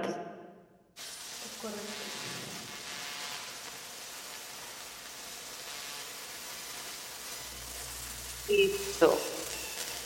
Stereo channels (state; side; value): identical; both; correlation 1.00